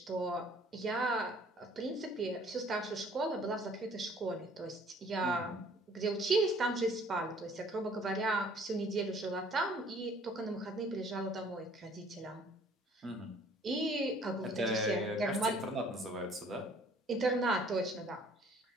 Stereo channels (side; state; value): both; normal; correlation 0.56